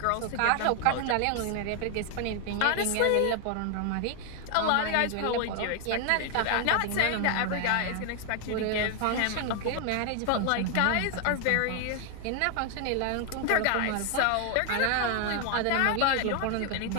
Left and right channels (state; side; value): different; both; correlation 0.00